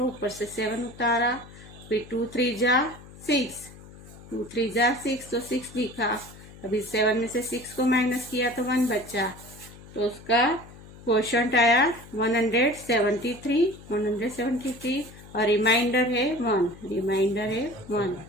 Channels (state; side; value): noise; left; hum, 19 dB below the sound